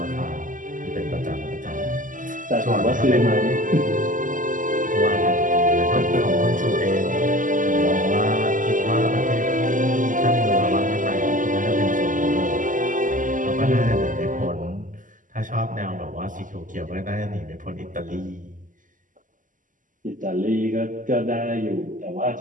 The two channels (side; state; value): left; late; 0.38 ms